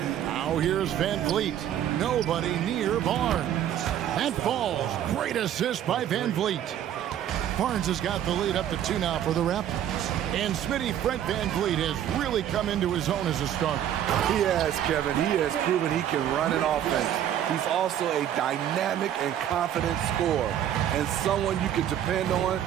Now here's Van Vliet. Nobody near Barnes. That falls. Great assist by Van Vliet. Barnes has got the lead up to 2 now for the Raptors. And Smitty, Fred Van Vliet has really come into his own as a starter. He has, Kevin. He has proven he can run an offense. He's also a dynamic and confident scorer and someone you can depend on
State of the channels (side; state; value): left; quieter; 10.7 dB